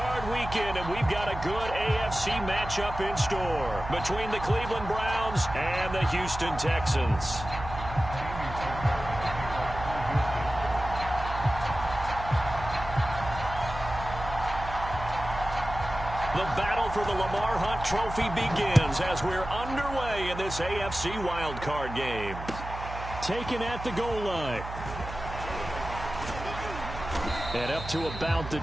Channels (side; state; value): right; noise; hum, 10 dB below the sound